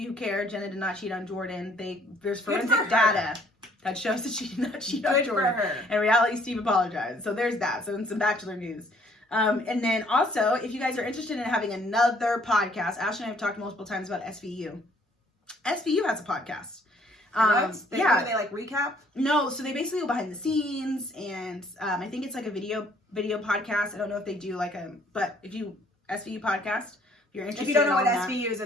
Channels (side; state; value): both; normal; correlation 0.62